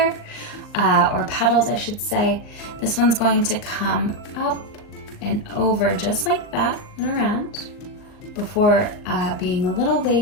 or petals I should say. This one's going to come up and over just like that and around before being a little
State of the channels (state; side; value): late; right; 39 ms